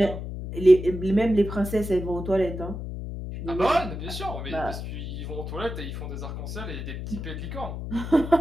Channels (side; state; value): left; noise; hum, 7 dB below the sound